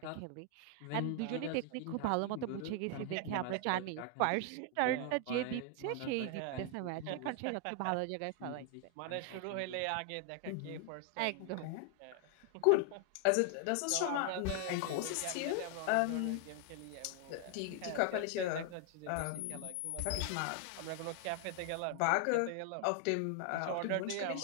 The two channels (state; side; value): different; both; correlation 0.00